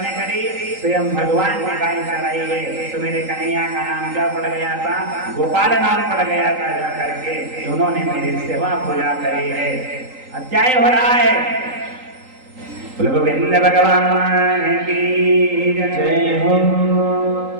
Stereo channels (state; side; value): late; left; 3.8 ms